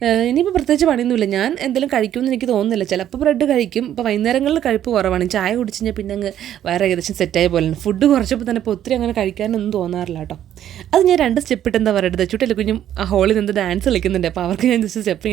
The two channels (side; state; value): left; quieter; 11.0 dB